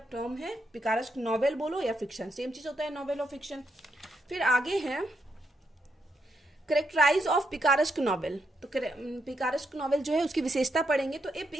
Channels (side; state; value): both; normal; correlation 0.80